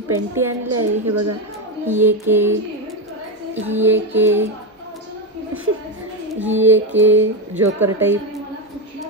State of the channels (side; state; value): both; normal; correlation 0.10